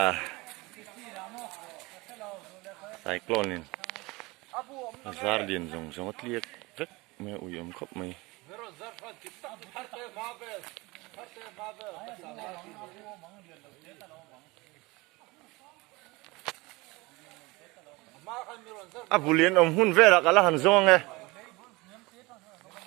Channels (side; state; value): left; quieter; 23.3 dB